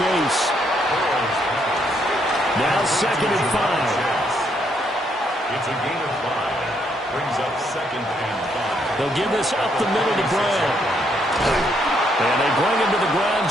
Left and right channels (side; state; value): both; normal; correlation 0.73